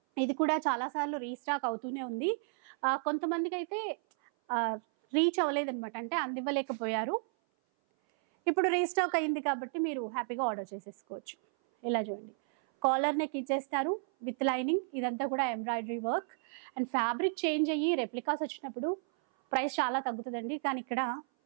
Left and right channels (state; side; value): silent; left; 56 dB below the other